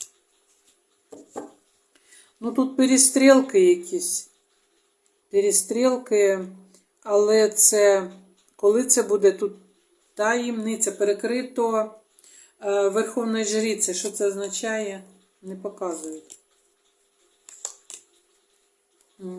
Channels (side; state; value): both; identical; correlation 1.00